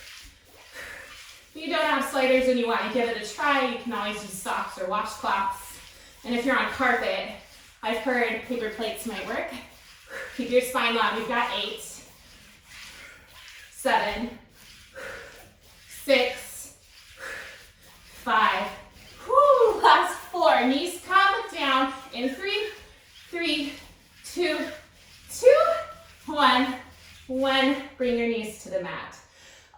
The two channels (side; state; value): both; identical; correlation 1.00